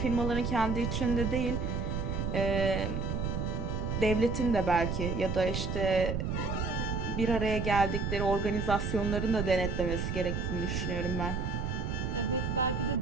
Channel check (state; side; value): noise; right; rumble, 1 dB below the sound